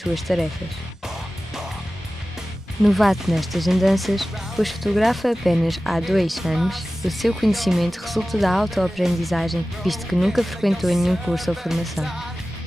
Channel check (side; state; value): both; normal; correlation 0.96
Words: tarefas. Novato nestas andanças, pois fotografa apenas há 2 anos, o seu conhecimento resulta da autoaprendizagem, visto que nunca frequentou nenhum curso ou formação.